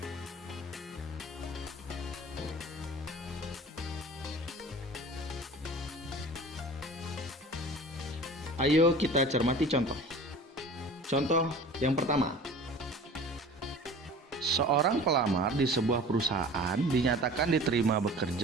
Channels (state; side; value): normal; both; correlation 0.41